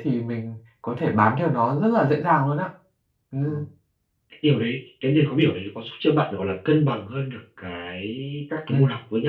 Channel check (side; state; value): both; identical; correlation 1.00